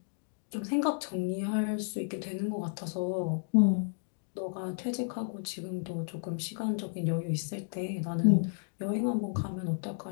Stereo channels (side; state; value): right; silent; digital silence